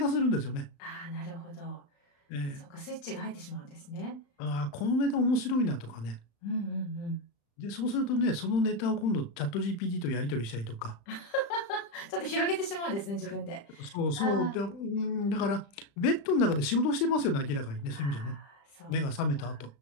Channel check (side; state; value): right; late; 35 ms